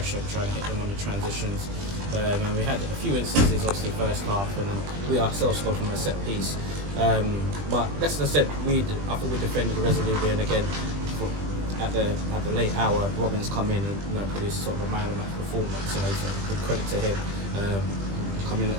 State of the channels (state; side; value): late; left; 20 ms